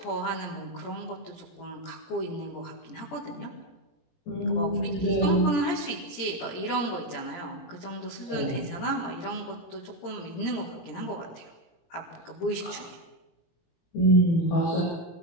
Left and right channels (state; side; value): late; right; 17 ms